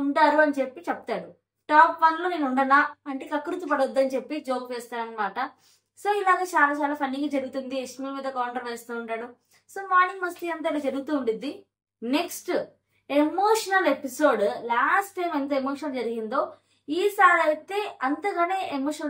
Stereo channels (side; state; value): both; identical; correlation 1.00